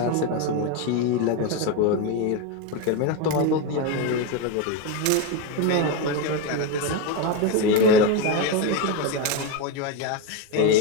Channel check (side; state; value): both; different; correlation 0.04